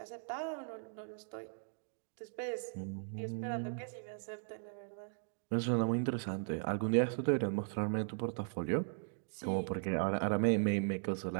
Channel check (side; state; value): left; silent; digital silence